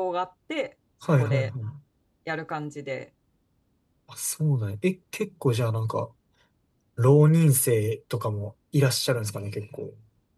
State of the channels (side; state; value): both; identical; correlation 1.00